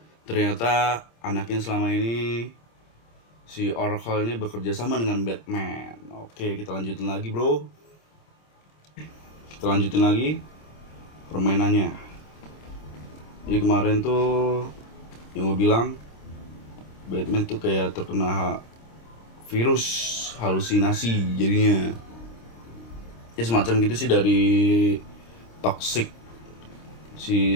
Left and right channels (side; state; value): right; late; 26 ms